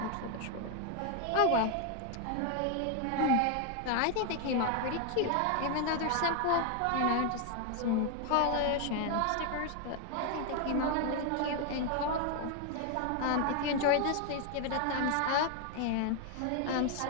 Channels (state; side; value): different; both; correlation 0.00